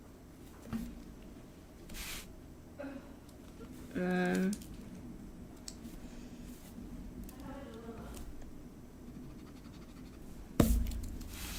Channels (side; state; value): both; identical; correlation 1.00